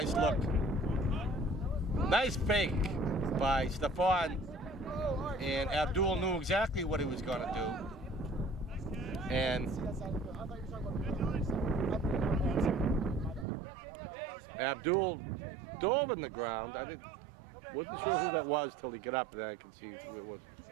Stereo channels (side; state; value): left; drops out; at 13.5 s